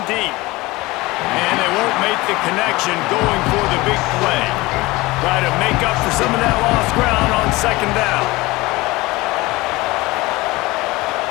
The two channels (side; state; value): right; quieter; 21.1 dB